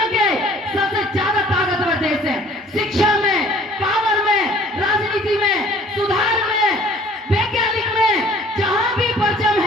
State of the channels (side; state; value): both; normal; correlation 0.53